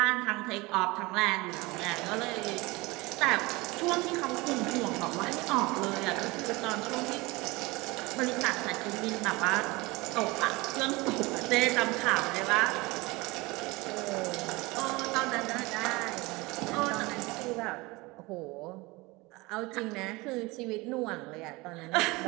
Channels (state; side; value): quieter; left; 23.1 dB